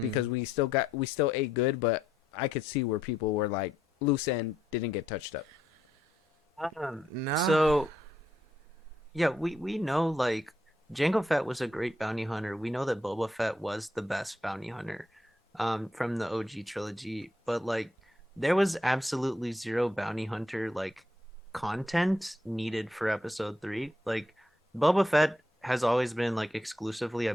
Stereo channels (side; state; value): both; normal; correlation 0.76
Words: because we still ate good, but I could see where people were like loose end didn't get touched up. no. So, yeah, we know like Jango Fett was a great bounty hunter. We know that Boba Fett was the best bounty hunter from the OG trilogy, but like there was absolutely zero bounty hunter like content needed for episode 3. Like Boba Fett has always been like exclusively a